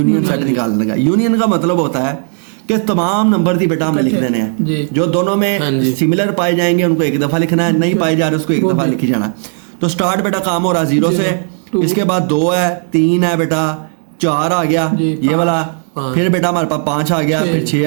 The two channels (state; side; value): silent; left; digital silence